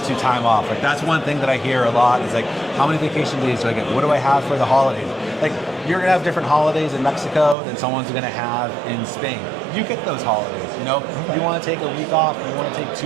to time off. Like that's one thing that I hear a lot is like, how many vacation days do I get? What do I have for the holidays? Like you're gonna have different holidays in Mexico than someone's gonna have in Spain. You get those holidays, You wanna take a week off, you wanna take 2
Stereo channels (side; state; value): left; drops out; at 7.6 s